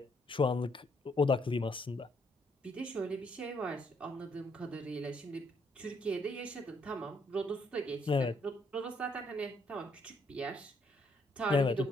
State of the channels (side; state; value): both; normal; correlation 0.70